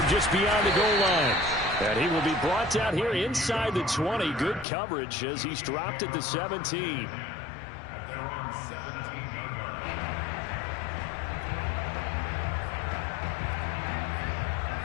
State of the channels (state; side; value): drops out; right; at 4.7 s